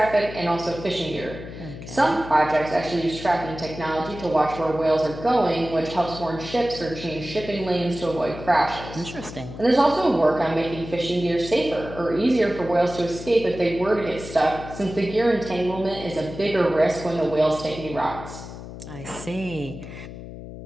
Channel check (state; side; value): noise; left; hum, 12 dB below the sound